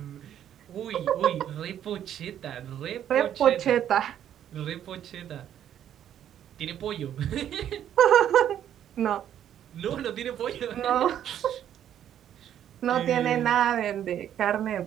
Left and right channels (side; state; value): left; quieter; 10.4 dB